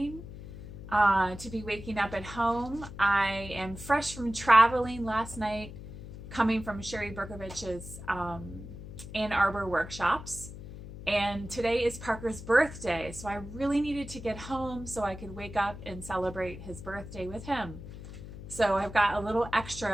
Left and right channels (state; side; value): noise; left; hum, 12 dB below the sound